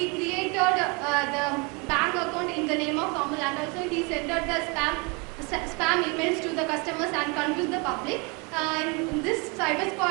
created the bank account in the name of Amul, and also he sent out the spam emails to the customers and confused the public. This cyber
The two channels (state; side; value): quieter; left; 30.6 dB